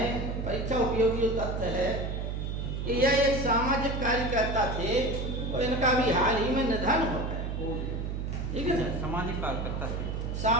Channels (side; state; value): right; noise; hum, 3 dB below the sound